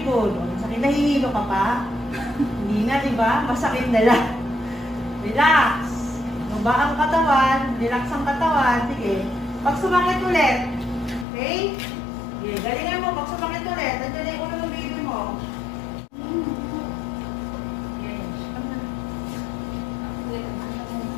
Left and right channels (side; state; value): right; drops out; at 11.2 s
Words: good. Masakit, nahihilo ka pa? Hindi na, diba? Masakit na lang. Relax. Baba ang katawan. Relax ang katawan. Sige. Pag sumakit ulit. Okay? Sige, galingan mo. Pag sumakit ulit, nandiyan na yung ulo ng baby mo. Sige.